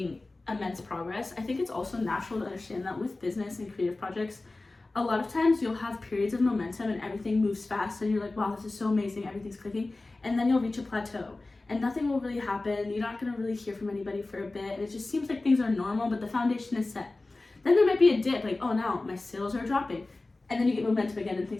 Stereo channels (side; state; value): right; quieter; 3.1 dB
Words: immense progress. I think it's also natural to understand that with business and creative projects, a lot of times you'll have periods of momentum and everything moves fast and you're like, wow, this is so amazing, everything's clicking. And then you'll reach a plateau and nothing will really happen. You're not gonna really hear from anybody for a bit. And it just seems like things are normal, but the foundation is set. Then there might be a dip, like, oh, now my sales are dropping. And then you get momentum again and